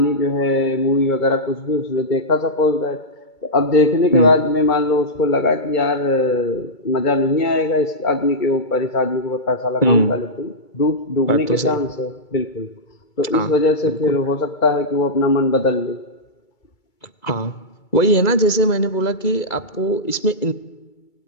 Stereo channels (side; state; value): right; late; 2.3 ms